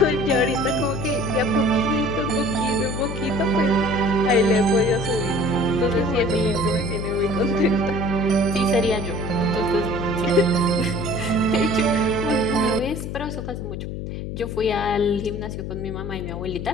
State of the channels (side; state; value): left; noise; hum, 6 dB below the sound